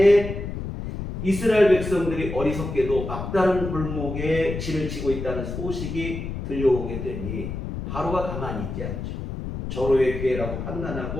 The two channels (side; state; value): left; noise; rumble, 6 dB below the sound